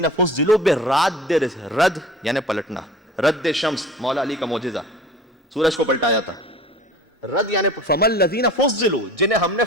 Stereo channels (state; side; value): normal; both; correlation 0.41